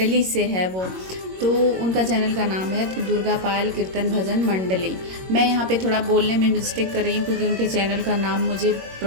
से है वो। तो उनका चैनल का नाम है दुर्गा पायल कीर्तन भजन मंडली। मैं यहाँ पे थोड़ा बोलने में मिस्टेक कर रही हूँ, क्योंकि उनके चैनल का नाम मुझे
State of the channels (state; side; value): late; left; 22 ms